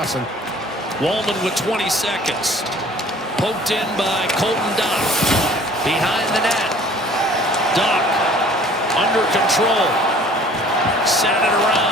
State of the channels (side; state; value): both; normal; correlation 0.51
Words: Wallman with 20 seconds. Poked in by Colton Dock. Behind the net. Dock under control. sent it